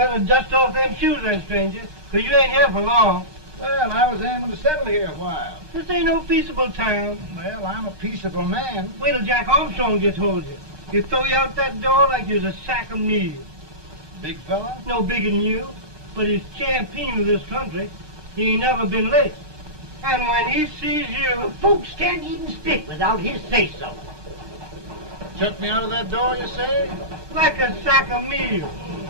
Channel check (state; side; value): late; left; 6.5 ms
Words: dust off them shoes then, stranger, 'cause you ain't here for long. Well, I was aiming to settle here a while. This ain't no peaceable town. Well, I'm a peaceable man. Wait till Jack Armstrong gets hold of you. He'll throw you out that door like you're a sack of meal. Big fella? No bigger than you, but he's champion of this country. He ain't never been late. And when he sees you... Folks can't even speak without his say-so. Chuck me out of that door, you say? like a sack of meal.